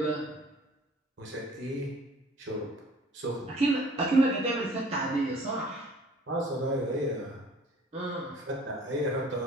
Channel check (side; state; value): both; normal; correlation 0.51